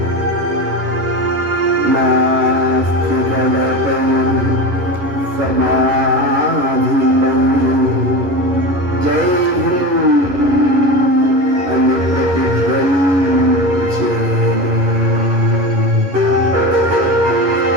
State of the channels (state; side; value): late; left; 11 ms